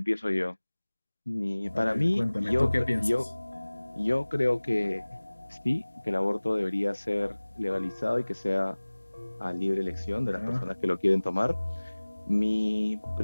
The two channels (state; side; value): inverted; both; correlation -1.00